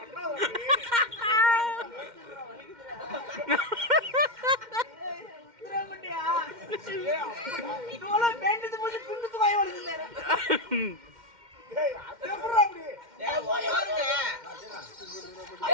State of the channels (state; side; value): late; left; 2.1 ms